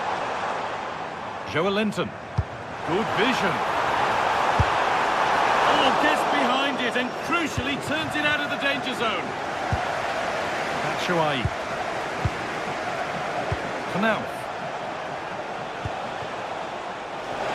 Joelinton. Good vision. it and crucially turns it out of the danger zone. Batshuayi. Knauf.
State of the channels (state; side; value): identical; both; correlation 1.00